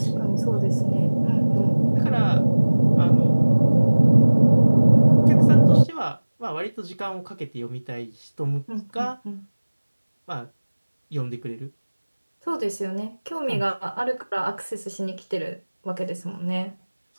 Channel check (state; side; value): inverted; both; correlation -1.00